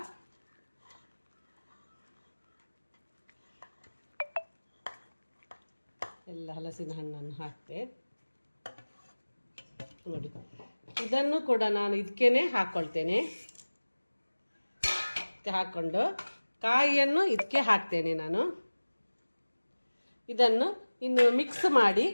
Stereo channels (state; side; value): inverted; both; correlation -1.00